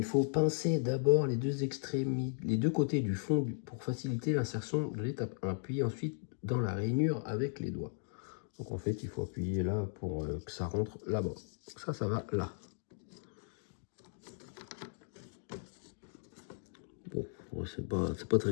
faut pincer d'abord les deux extrémités, les deux côtés du fond pour faciliter l'insertion de l'étape 1, puis ensuite dans la rainure avec les doigts. Donc en fait, il faut appuyer là pour que ça rentre là-bas. Ça va là. Bon, c'est pas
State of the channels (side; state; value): right; silent; digital silence